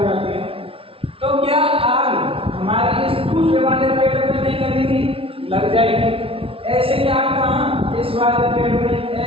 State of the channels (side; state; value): left; late; 0.26 ms